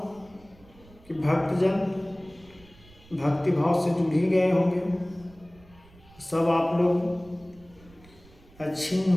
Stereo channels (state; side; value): noise; right; rumble, 25 dB below the sound